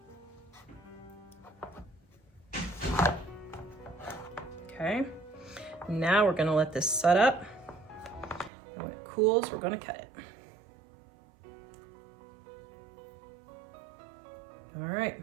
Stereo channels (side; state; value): left; drops out; at 8.5 s